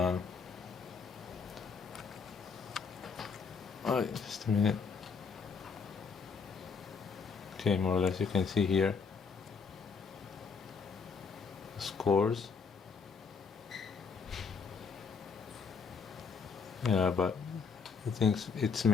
just a minute. Okay, more or less you can see here the scores. Yeah, but I think it's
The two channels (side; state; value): right; quieter; 5.5 dB